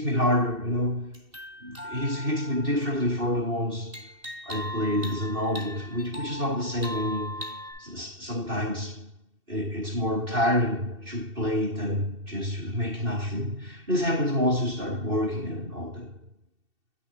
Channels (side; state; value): left; late; 2.7 ms